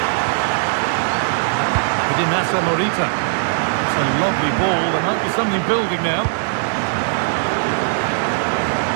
Massa Morita. It's a lovely ball. There might be something building now.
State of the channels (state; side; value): silent; left; digital silence